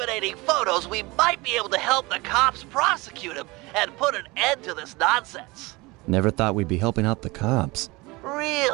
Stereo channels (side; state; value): left; quieter; 23.3 dB